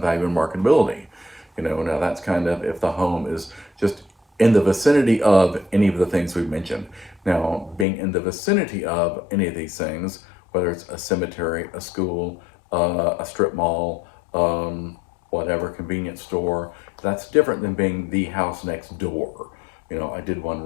and marketability. Now that's kind of if the home is just in the vicinity of any of the things we've mentioned. Now, being in the vicinity of any of these things, whether it's a cemetery, a school, a strip mall, whatever, convenience store, that's different than being the house next door. I did one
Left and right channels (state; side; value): drops out; right; at 7.9 s